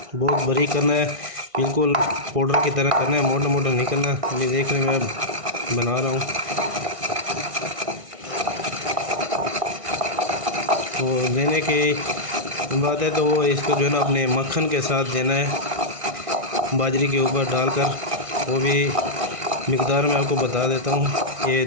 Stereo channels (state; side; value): late; left; 1.6 ms